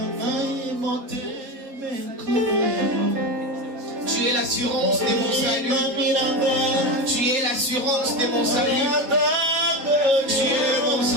Tu es l'assurance de mon salut. Tu es l'assurance de mon salut. Tu es mon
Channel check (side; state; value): left; late; 3.8 ms